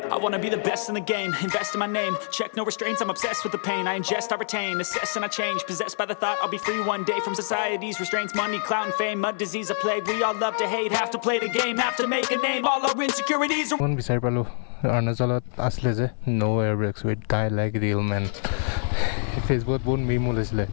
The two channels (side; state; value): right; silent; 56 dB below the other